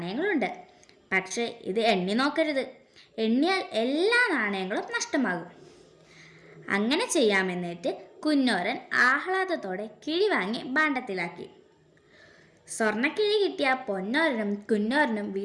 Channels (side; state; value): both; identical; correlation 1.00